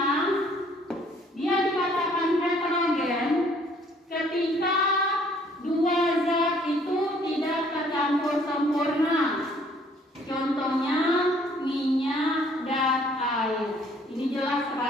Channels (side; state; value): both; normal; correlation 0.60